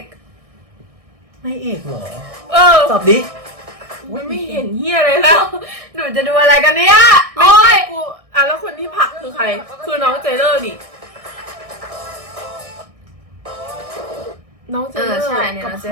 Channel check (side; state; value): left; late; 1.6 ms